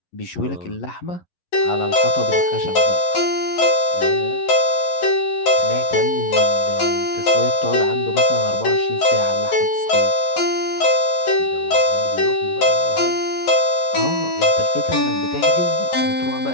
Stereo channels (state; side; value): late; right; 11 ms